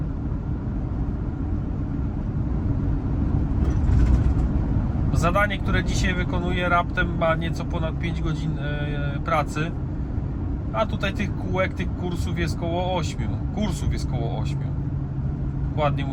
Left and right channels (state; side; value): identical; both; correlation 1.00